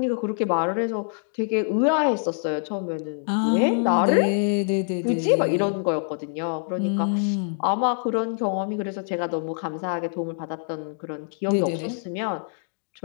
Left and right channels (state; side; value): silent; right; digital silence